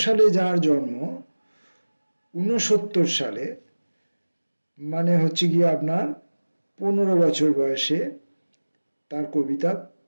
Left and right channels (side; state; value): both; inverted; correlation -1.00